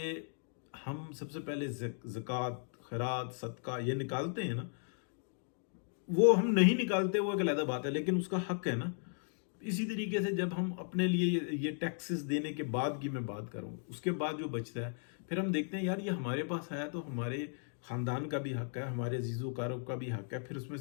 हम सबसे पहले ज़कात, खैरात, सदका ये निकालते हैं ना, वो हम नहीं निकालते वो एक अलग बात है, लेकिन उसका हक है ना। इसी तरीके से जब हम अपने लिए ये टैक्सेस देने के बाद की मैं बात करूँ, उसके बाद जो बचता है फिर हम देखते हैं यार ये हमारे पास आया तो हमारे ख़ानदान का भी हक है, हमारे अजीज़ोकारों का भी हक है, फिर उसमें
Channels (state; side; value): silent; right; 54 dB below the other